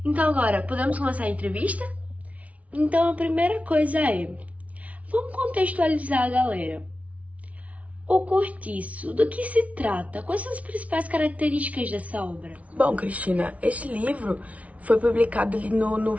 Então agora, podemos começar a entrevista? Então a primeira coisa é, vamos contextualizar a galera. O Cortiço, do que se trata? Quais são as principais características dessa obra? Bom, Cristina, este livro foi publicado ali no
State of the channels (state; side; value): late; left; 0.066 ms